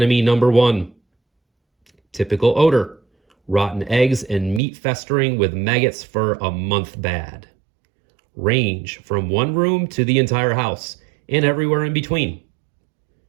number 1. Typical odor, rotten eggs and meat festering with maggots for a month bad. Range, from one room to the entire house, and everywhere in between.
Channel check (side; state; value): left; drops out; at 4.6 s